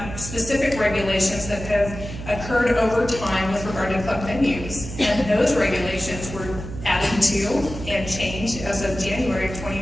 specific regulations that have occurred over time with regard to club venues. And those regulations were added to and changed as of January of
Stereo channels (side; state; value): right; noise; hum, 10 dB below the sound